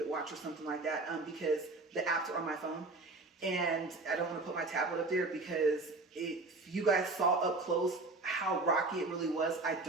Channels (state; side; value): quieter; left; 3.3 dB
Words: watch or something like that, because the apps are on my phone, and I don't want to put my tablet up there, because if you guys saw up close how rocky it really was, I